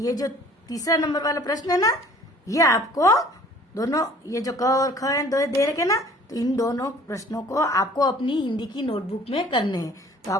जो तीसरा नंबर वाला प्रश्न है ना, ये आपको दोनों, ये जो क और ख है दो दे रखे ना, तो इन दोनों प्रश्नों को आपको अपनी हिंदी की नोटबुक में करने हैं। तो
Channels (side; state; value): both; normal; correlation 0.52